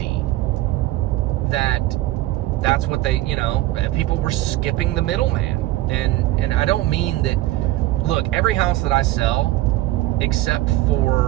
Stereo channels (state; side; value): quieter; left; 16.4 dB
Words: that's what they, you know, people were skipping the middleman. And I don't mean that, look, every house that I sell, except